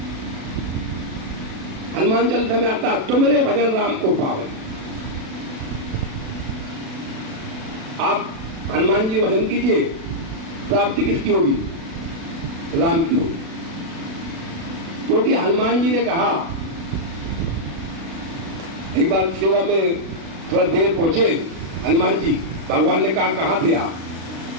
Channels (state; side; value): late; left; 36 ms